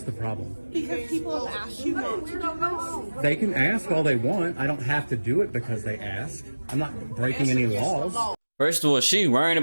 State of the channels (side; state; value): both; inverted; correlation -1.00